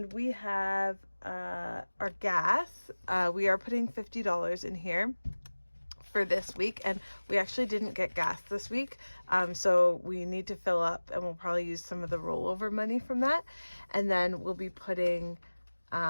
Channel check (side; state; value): both; inverted; correlation -1.00